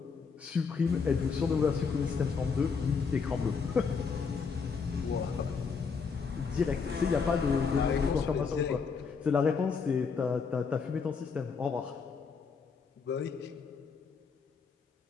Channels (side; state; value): right; quieter; 5.5 dB